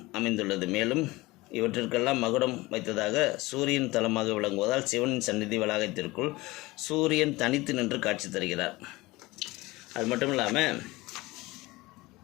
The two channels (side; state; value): right; quieter; 20.9 dB